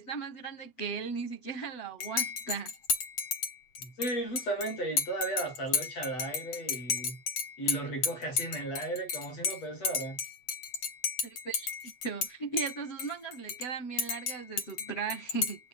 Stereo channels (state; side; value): late; right; 7.9 ms